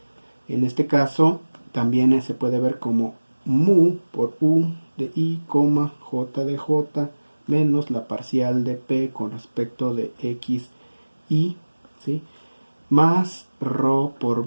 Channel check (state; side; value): inverted; both; correlation -1.00